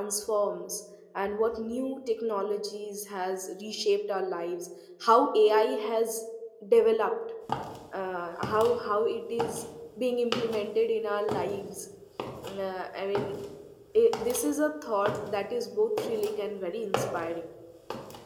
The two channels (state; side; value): identical; both; correlation 1.00